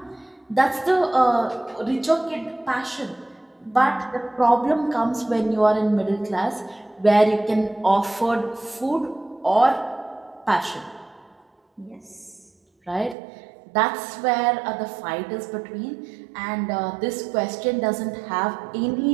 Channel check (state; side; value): drops out; left; at 13.2 s